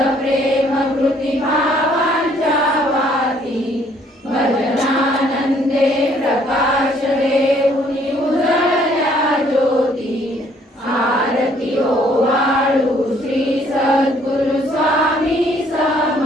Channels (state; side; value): normal; both; correlation 0.63